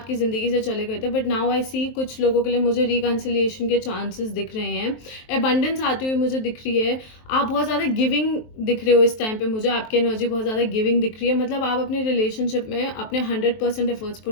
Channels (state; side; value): late; right; 23 ms